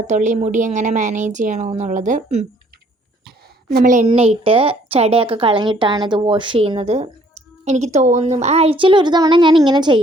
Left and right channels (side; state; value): both; normal; correlation 0.61